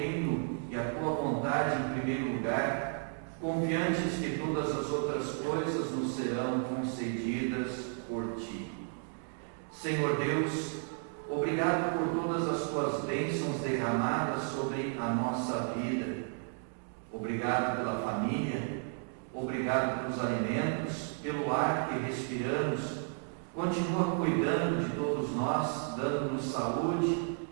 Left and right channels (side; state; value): left; silent; 56 dB below the other